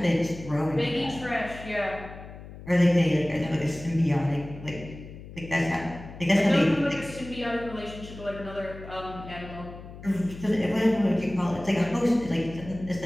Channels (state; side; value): noise; left; hum, 15 dB below the sound